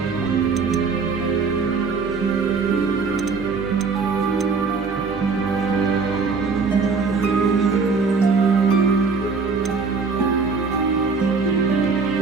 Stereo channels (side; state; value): left; quieter; 4.7 dB